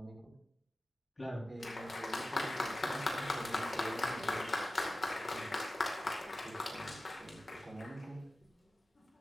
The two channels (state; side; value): normal; both; correlation 0.95